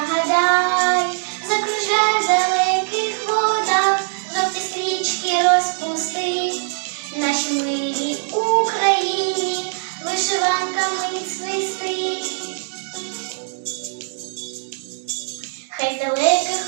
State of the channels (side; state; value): left; silent; digital silence